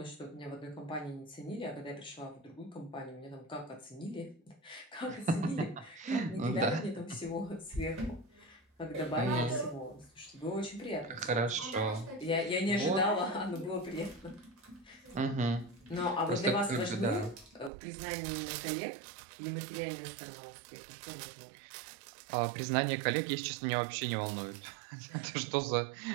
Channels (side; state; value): left; drops out; at 17.7 s